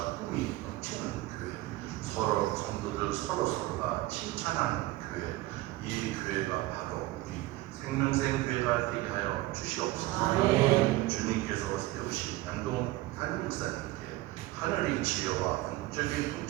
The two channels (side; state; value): left; quieter; 18.2 dB